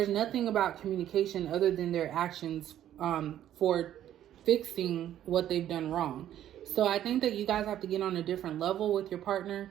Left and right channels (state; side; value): quieter; left; 11.5 dB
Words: nothing about communication other than their actions for fixing what they've done wrong. So I think that you guys have to get on a different level with your partner